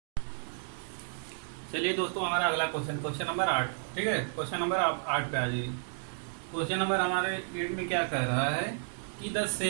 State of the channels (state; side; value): silent; left; digital silence